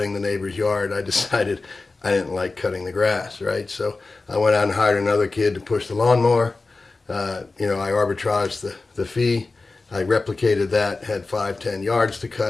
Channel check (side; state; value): right; quieter; 3.6 dB